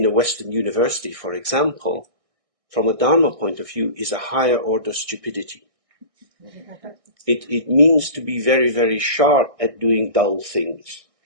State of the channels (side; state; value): left; late; 1.6 ms